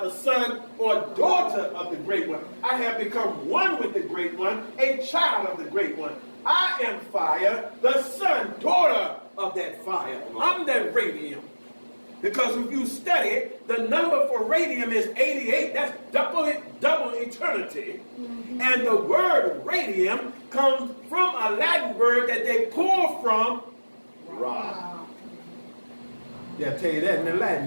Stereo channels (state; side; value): inverted; both; correlation -1.00